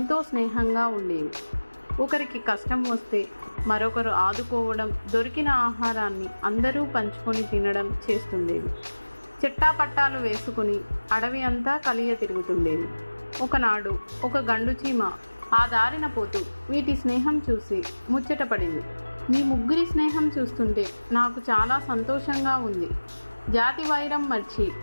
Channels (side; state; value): both; inverted; correlation -1.00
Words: స్నేహంగా ఉండేవి. ఒకరికి కష్టం వస్తే మరొకరు ఆదుకోవడం, దొరికిన ఆహారాన్ని అందరూ పంచుకొని తినడం చేస్తుండేవి. చెట్టాపట్టాలు వేసుకుని అడవి అంతా కలియ తిరుగుతుండేవి. ఒకనాడు ఒక గండు చీమ ఆ దారిన పోతూ వీటి స్నేహం చూసి ముచ్చటపడింది. మీ ముగ్గురి స్నేహం చూస్తుంటే నాకు చాలా సంతోషంగా ఉంది. జాతి వైరం మర్చి